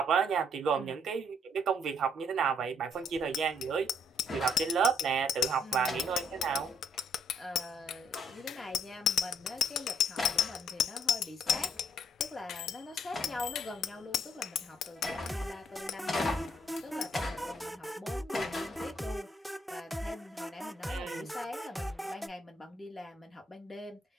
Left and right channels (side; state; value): both; normal; correlation 0.67